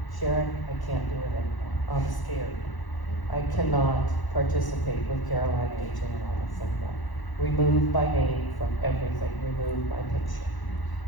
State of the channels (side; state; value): right; late; 1.0 ms